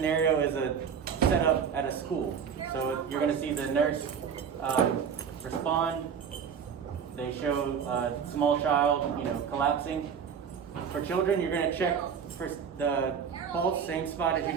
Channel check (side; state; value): left; quieter; 7.2 dB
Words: is a setup at a school. So you're going to see the nurse respond. They show a small child, collapsing. For children, you're going to check for the pulse, same spot as you